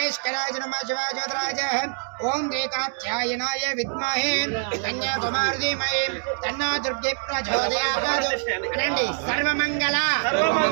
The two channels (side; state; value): left; silent; digital silence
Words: नमः शिवाय ज्योतिराय ओम रेखाध्यायनाय विद्महे कन्याकुमारी धीमहि तन्नो दुर्गे प्रचोदयात् अनंడి सर्वमंगल